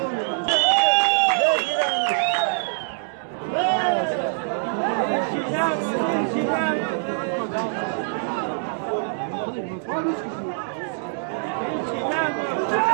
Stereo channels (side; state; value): left; silent; digital silence